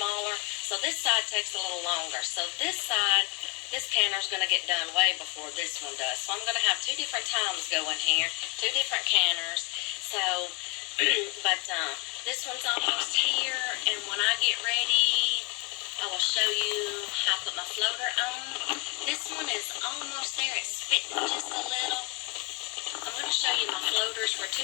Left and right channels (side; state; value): right; quieter; 25.0 dB